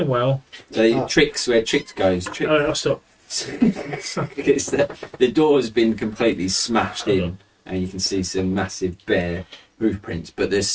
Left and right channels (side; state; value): both; identical; correlation 1.00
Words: well. The tricks where tricks goes. Trick. Oh, I'll stop. It's the door's been completely smashed in, and you can see some massive bare hoof prints. But